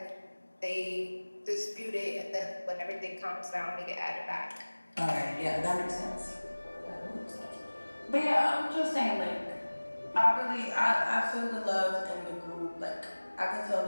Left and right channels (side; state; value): both; inverted; correlation -1.00